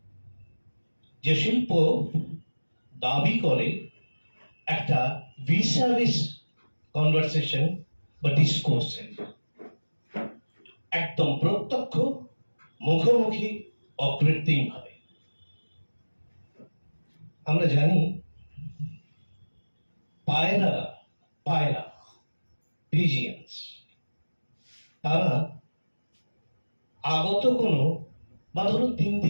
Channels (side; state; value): both; inverted; correlation -1.00